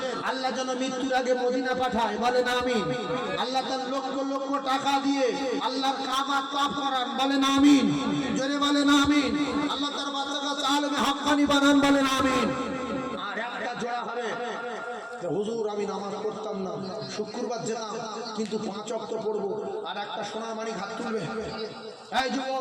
আল্লাহ যেন মৃত্যুর আগে মদিনা পাঠায়, বলেন আমিন। আল্লাহ তার লক্ষ লক্ষ টাকা দিয়ে আল্লাহর কাবা তাওয়াফ করান, বলেন আমিন। জোরে বলেন আমিন। আল্লাহ তার বাচ্চাকে আলেমে হাক্কানি বানান, বলেন আমিন। আর একটা জোড়া হবে, হুজুর আমি নামাজ পড়তাম না, শুক্রবার যেতাম, কিন্তু 5 ওয়াক্ত পড়বো। আর একটা সোনার মানিক হাত তুলবে। এই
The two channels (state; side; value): identical; both; correlation 1.00